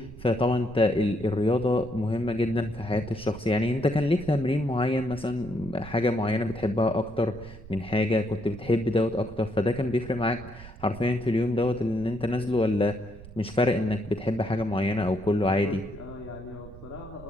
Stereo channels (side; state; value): right; noise; rumble, 17 dB below the sound